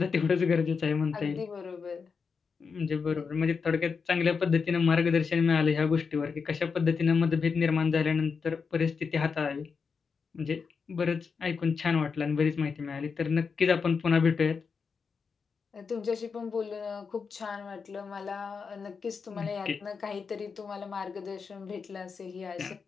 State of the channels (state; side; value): quieter; right; 5.5 dB